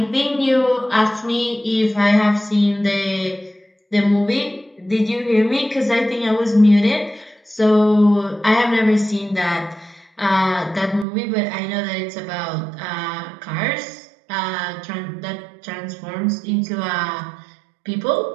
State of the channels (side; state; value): left; drops out; at 11.1 s